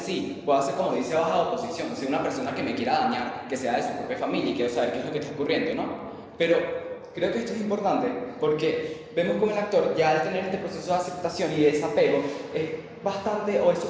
pueda ser como dice baja oposición, ser una persona que me quiera dañar, que sea de su propia familia y quiero saber qué es lo que está ocurriendo, ¿no? Pero creo que esto es importante porque vemos como el actor ya al tener este proceso de aceptación y de desapego es bastante o es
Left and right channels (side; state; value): both; identical; correlation 1.00